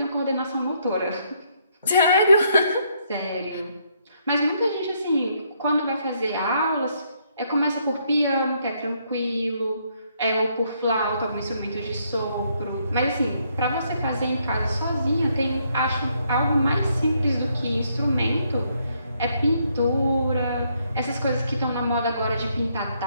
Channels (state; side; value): inverted; both; correlation -0.72